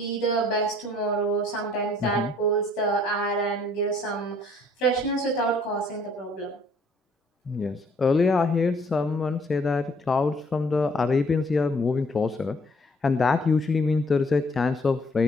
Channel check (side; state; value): both; normal; correlation 0.62